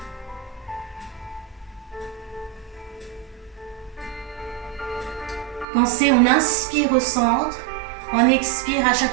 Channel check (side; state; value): left; drops out; at 5.7 s